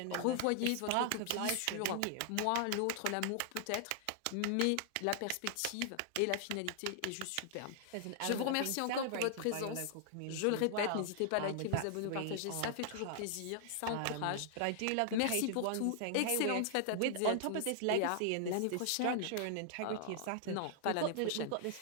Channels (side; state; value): both; different; correlation -0.01